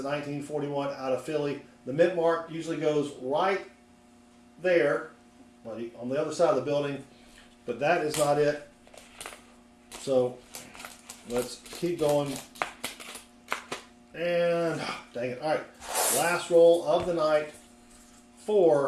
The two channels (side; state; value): both; identical; correlation 1.00